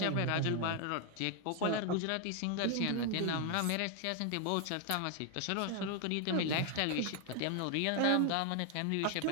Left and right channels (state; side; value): different; both; correlation 0.00